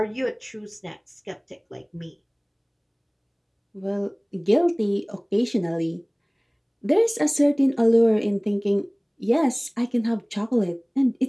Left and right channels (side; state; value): both; identical; correlation 1.00